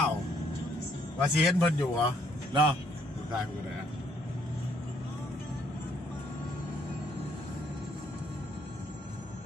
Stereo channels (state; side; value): normal; both; correlation 0.68